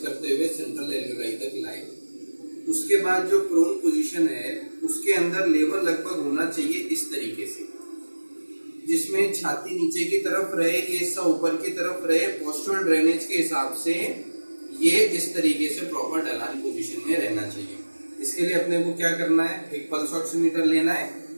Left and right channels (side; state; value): both; inverted; correlation -1.00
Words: करते हुए सेंट्रल एल्वियोलाई तक लाए। उसके बाद जो प्रोन पोजीशन है उसके अंदर लेवल लगभग होना चाहिए इस तरीके से, जिसमें छाती नीचे की तरफ रहे, ये हिस्सा ऊपर की तरफ रहे। पोस्चरल ड्रेनेज के हिसाब से ये इस तरीके से प्रॉपर ढलान पोजीशन में रहना चाहिए। इसके लिए अपने को क्या करना है, एक पल्स ऑक्सीमीटर लेना है